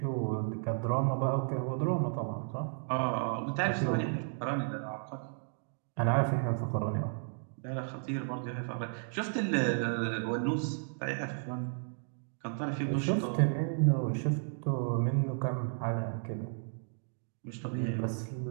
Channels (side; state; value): left; silent; digital silence